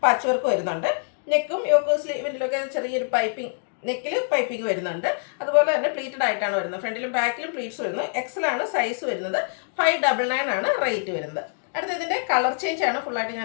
പാച്ച് വർക്ക് വരുന്നുണ്ട്. നെക്കും യോക്ക് സ്ലീവിലൊക്കെ ചെറിയൊരു പൈപ്പിംഗ്, നെക്കിൽ പൈപ്പിംഗ് വരുന്നുണ്ട്. അതുപോലെ തന്നെ പ്ലീറ്റഡ് ആയിട്ടാണ് വരുന്നത്. ഫ്രണ്ടിലും ബാക്കിലും പ്ലീറ്റ്സ് വരുന്നു. എക്സലാണ് സൈസ് വരുന്നത്. 599 ആണ് റേറ്റ് വരുന്നത്. അടുത്ത ഇതിൻ്റെ കളർ ചേഞ്ച് ആണ്. ഫുള്ളായിട്ട്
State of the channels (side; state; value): right; silent; digital silence